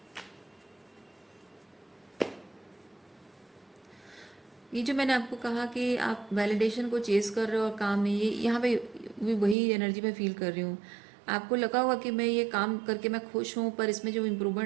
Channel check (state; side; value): drops out; left; at 9.6 s